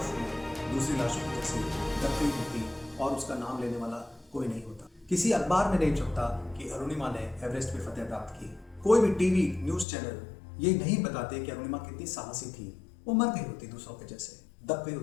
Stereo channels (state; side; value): drops out; right; at 9.9 s